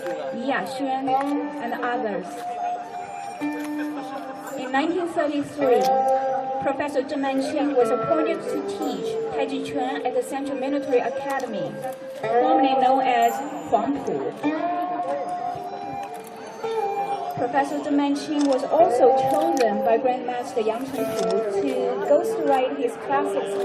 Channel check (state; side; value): identical; both; correlation 1.00